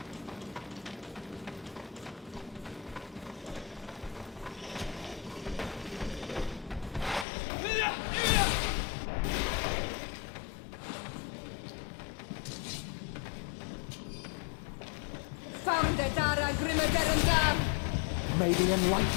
Found the Dara Grimaderandam! May the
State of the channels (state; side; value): drops out; right; at 7.2 s